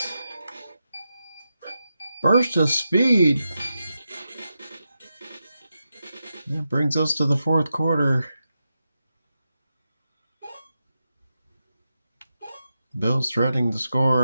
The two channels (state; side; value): inverted; both; correlation -0.88